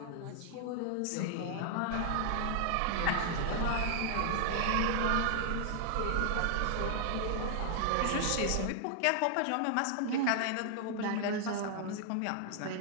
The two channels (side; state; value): both; different; correlation 0.00